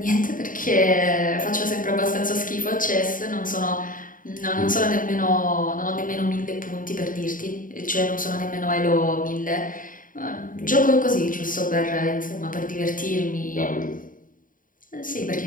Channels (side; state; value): right; late; 0.39 ms